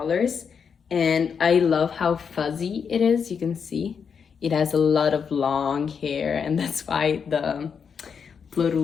And I love how fuzzy it is. You can see it has a lot of long hair, and that's why the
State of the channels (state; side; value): quieter; right; 6.5 dB